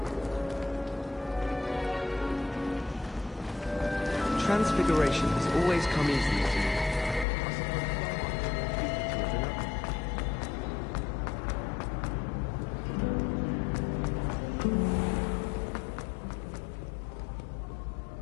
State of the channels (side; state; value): right; drops out; at 7.2 s